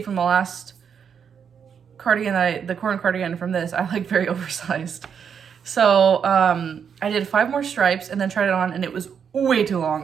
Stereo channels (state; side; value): quieter; left; 7.3 dB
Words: from the last cardigan, the corn cardigan from this, I like very oversized. So I did 5 more stripes and then tried it on, and it was way too